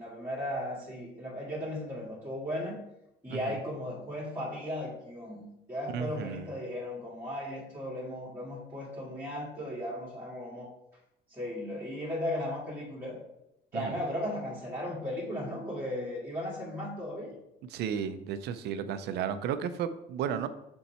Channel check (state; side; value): normal; both; correlation 0.41